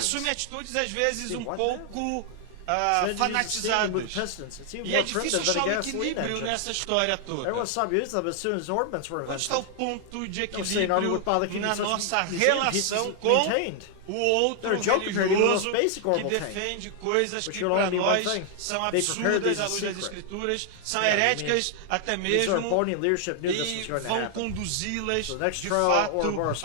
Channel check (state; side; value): different; both; correlation 0.00